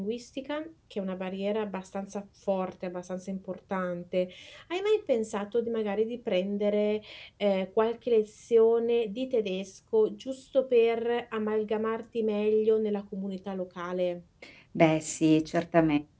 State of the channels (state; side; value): identical; both; correlation 1.00